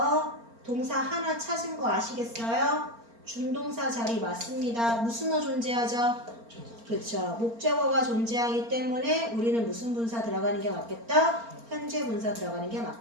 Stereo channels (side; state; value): left; late; 4.3 ms